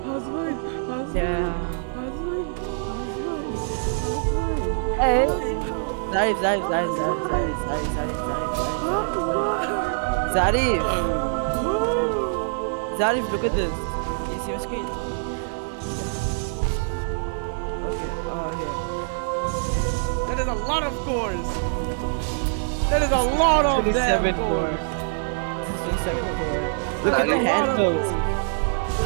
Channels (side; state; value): left; silent; digital silence